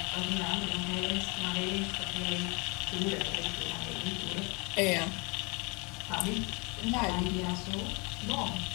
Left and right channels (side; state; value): right; quieter; 30.2 dB